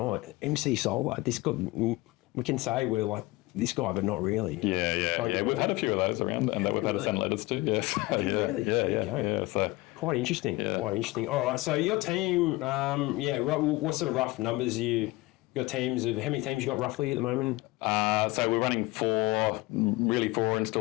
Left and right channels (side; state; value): right; quieter; 21.1 dB